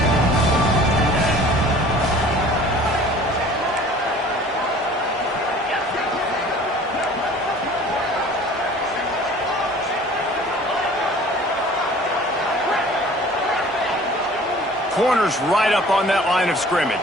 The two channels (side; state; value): both; normal; correlation 0.48